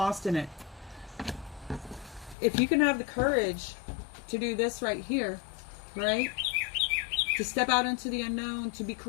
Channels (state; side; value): drops out; right; at 2.4 s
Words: in it. If you can have the courage to do this right here, right? To step out into the unknown, to be